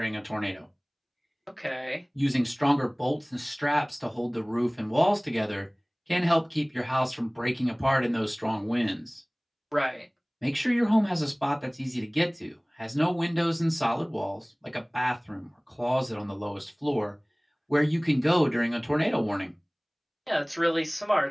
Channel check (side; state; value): both; identical; correlation 1.00